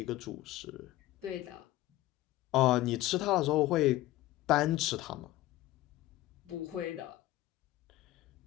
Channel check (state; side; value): quieter; right; 16.2 dB